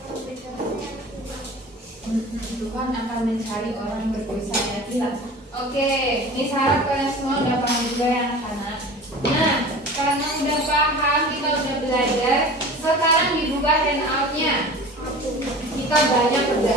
Tuhan akan mencari orang berdosa yang hilang. Oke, ini harap kalian semua udah paham juga ya anak-anak. Nah, karena udah paham, kita udah belajar. Sekarang dibuka handout-nya. Kita banyak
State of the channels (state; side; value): normal; both; correlation 0.38